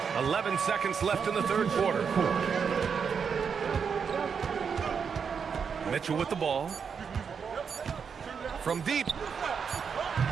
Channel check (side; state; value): left; quieter; 6.4 dB